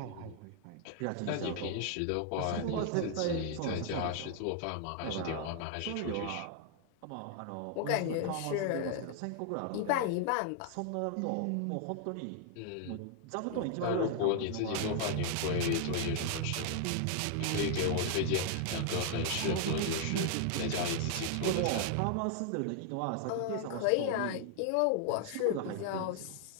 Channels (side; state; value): both; different; correlation 0.00